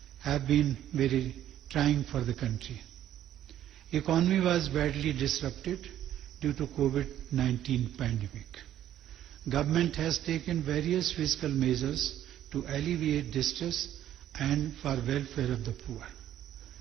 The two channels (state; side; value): quieter; left; 11.7 dB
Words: have been very trying for the country. Economy was badly disrupted due to COVID-19 pandemic. Government has taken various fiscal measures to alleviate distress and for welfare of the poor.